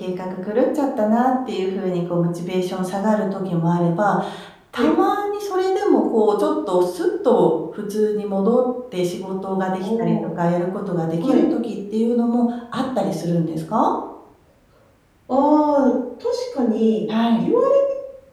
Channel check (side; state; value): both; identical; correlation 1.00